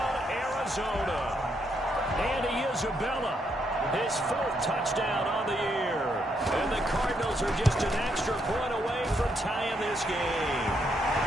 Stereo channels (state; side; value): normal; both; correlation 0.76